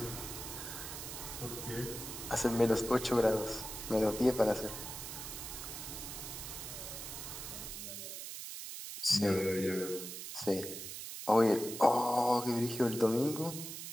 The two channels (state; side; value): noise; right; hiss, 8 dB below the sound